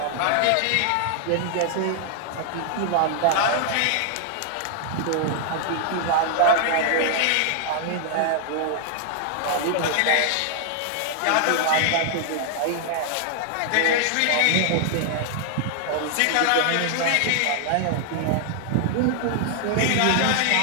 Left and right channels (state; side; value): different; both; correlation 0.00